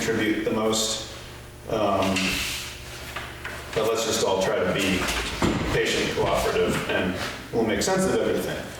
the most. But let's just all try to be patient, cooperative, and we'll make sense of everything.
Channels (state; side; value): identical; both; correlation 1.00